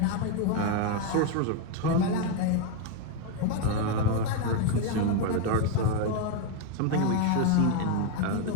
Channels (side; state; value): both; different; correlation 0.01